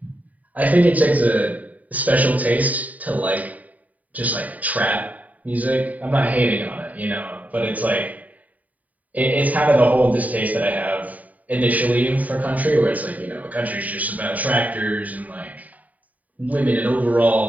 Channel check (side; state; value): left; late; 0.073 ms